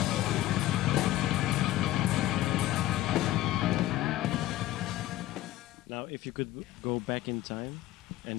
Now, if you could go back in time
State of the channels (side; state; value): right; quieter; 15.0 dB